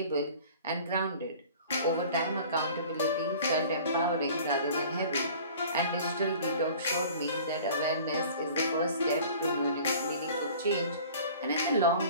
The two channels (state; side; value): inverted; both; correlation -0.46